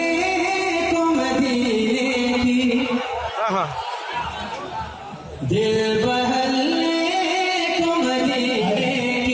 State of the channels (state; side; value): identical; both; correlation 1.00